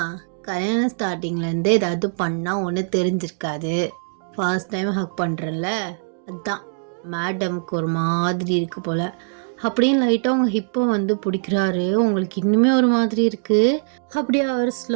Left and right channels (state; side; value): silent; left; digital silence